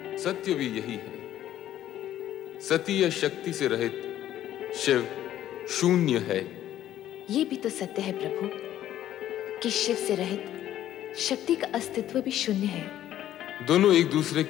सत्य भी यही है। सती या शक्ति से रहित शिव शून्य है। ये भी तो सत्य है प्रभु कि शिव से रहित शक्ति का अस्तित्व भी शून्य है। दोनों एक दूसरे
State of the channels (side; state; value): right; quieter; 12.2 dB